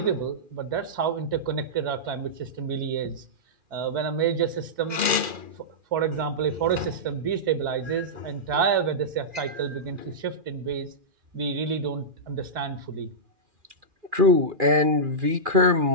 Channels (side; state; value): left; late; 2.4 ms